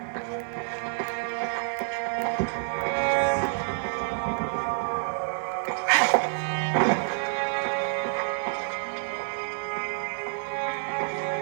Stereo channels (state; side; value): silent; left; 59 dB below the other